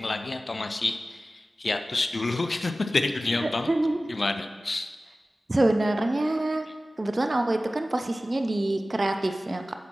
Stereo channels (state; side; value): normal; both; correlation 0.96